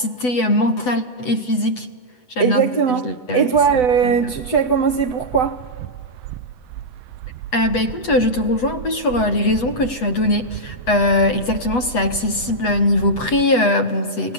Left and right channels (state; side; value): late; right; 8.1 ms